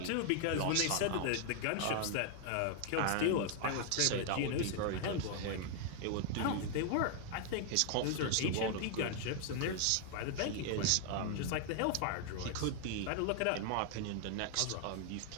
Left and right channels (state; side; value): different; both; correlation 0.00